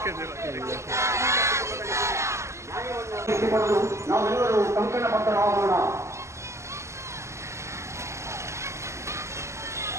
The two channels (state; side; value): late; left; 0.14 ms